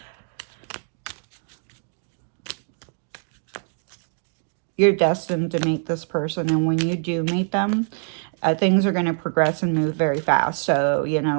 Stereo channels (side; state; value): left; silent; 56 dB below the other